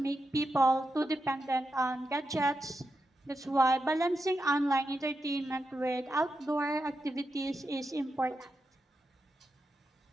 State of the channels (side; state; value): both; normal; correlation 0.87